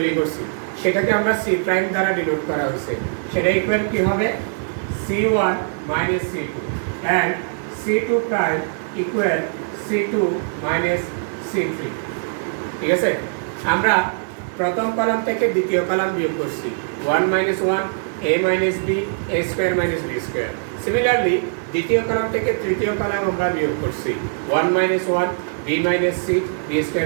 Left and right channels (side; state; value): left; silent; digital silence